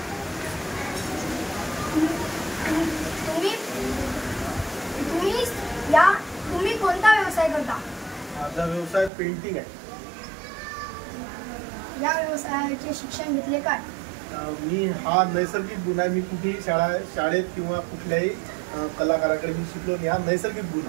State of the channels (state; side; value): drops out; left; at 9.1 s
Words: तुम्ही कोणता व्यवसाय करता? माझा व्यवसाय पेंटिंग आहे. या व्यवसायाचे शिक्षण घेतले काय? मी हा नैसर्गिक गुण आहे. मी कुठेही शाळेत किंवा कुठल्याही कलाकाराकडे मी शिकलो नाही. हा नैसर्गिक गुण